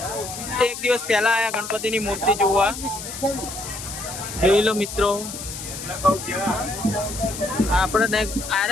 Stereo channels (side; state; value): left; noise; hiss, 9 dB below the sound